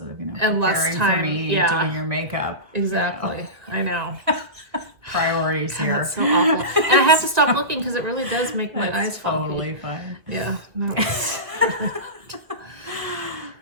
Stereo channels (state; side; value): late; left; 2.0 ms